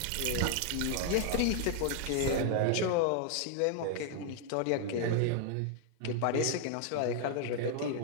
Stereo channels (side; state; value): both; different; correlation 0.00